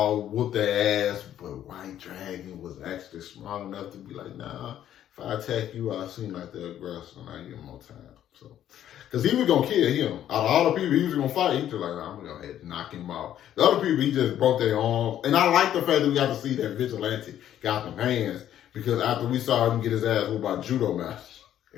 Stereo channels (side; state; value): right; quieter; 11.2 dB